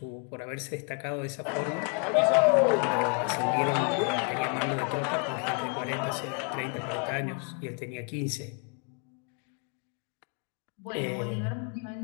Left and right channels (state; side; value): quieter; right; 39.5 dB